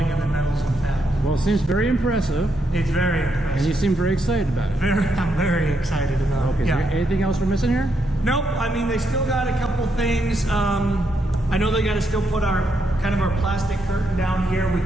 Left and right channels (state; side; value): normal; both; correlation 0.79